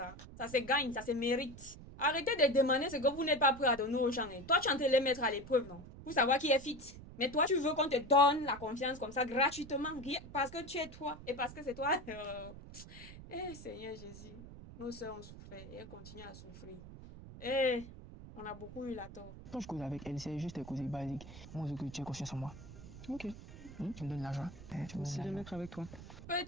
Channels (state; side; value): noise; right; rumble, 15 dB below the sound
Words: Ça se gagne, ça se mérite. Arrêtez de demander ce que vous n'êtes pas prêt à donner aux gens. Et toi, tu es en train de les mettre à l'épreuve, non? Pour savoir qui est fit. Mais toi, tu veux qu'on te donne la confiance comme ça, gratuitement, parce que tu es toi et parce que c'est toi. Eh, Seigneur Jésus, nos sœurs ont souffert et elles continuent à souffrir. Eh, on a beaucoup eu la tort. Quand je cause avec elle, c'est juste des causes basiques. Moi, je veux que tu aies confiance en moi. Ok. Tu me donnes l'argent. Tu me Aussi donnes de l'argent. mettre avec toi.